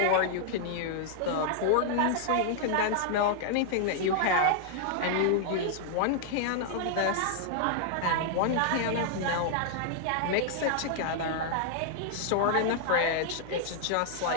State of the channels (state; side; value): different; both; correlation 0.00